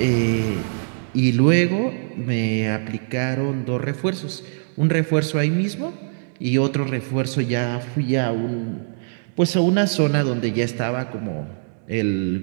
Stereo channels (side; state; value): left; silent; digital silence